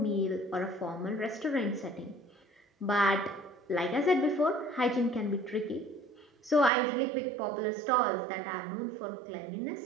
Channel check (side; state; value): left; drops out; at 6.7 s